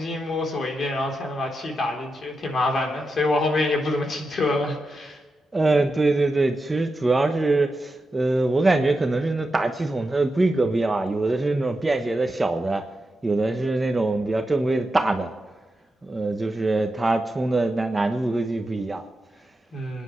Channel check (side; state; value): both; normal; correlation 0.89